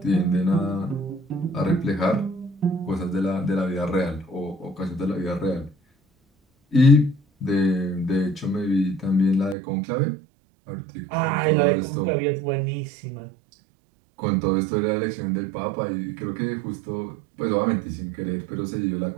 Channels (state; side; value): drops out; left; at 9.6 s